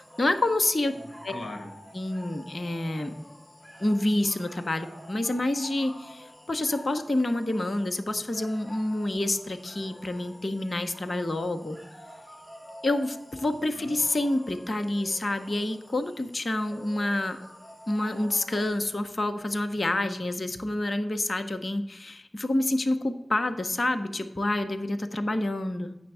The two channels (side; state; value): both; normal; correlation 0.96